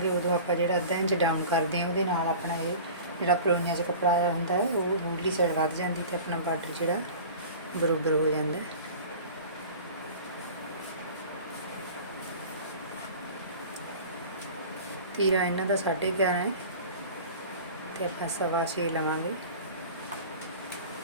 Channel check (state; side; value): inverted; both; correlation -0.39